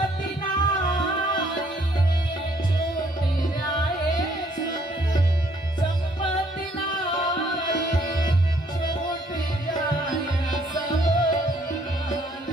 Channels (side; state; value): both; normal; correlation 0.65